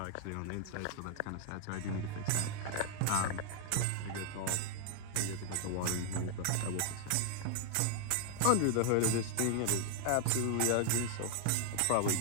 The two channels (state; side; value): different; both; correlation 0.00